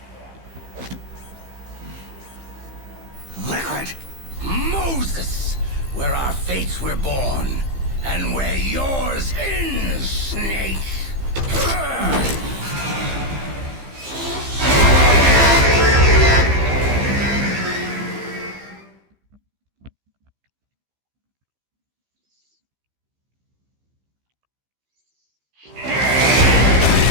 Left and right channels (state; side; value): late; left; 15 ms